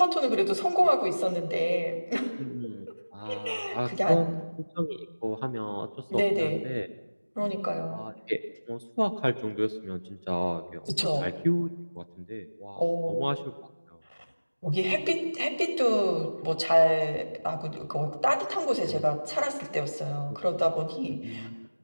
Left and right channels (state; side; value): inverted; both; correlation -1.00